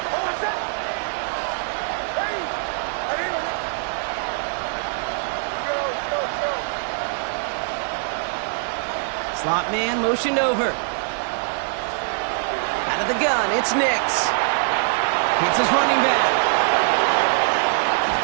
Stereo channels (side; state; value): left; silent; 55 dB below the other